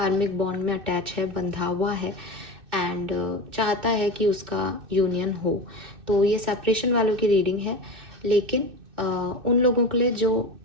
बॉन्ड में अटैच है, बंधा हुआ है एंड चाहता है कि उसका यूनियन हो। तो ये सेपरेशन वालों की रीडिंग है, लेकिन उन लोगों के लिए जो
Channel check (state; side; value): late; left; 2.6 ms